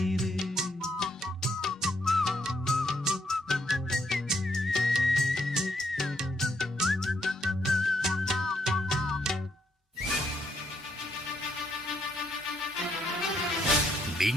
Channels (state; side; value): normal; both; correlation 0.73